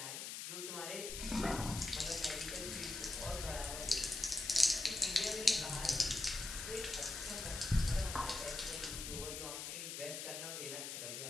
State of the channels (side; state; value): left; noise; hiss, 5 dB below the sound